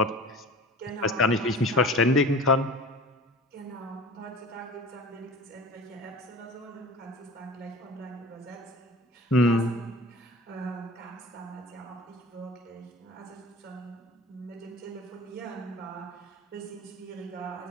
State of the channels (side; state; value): both; normal; correlation 0.39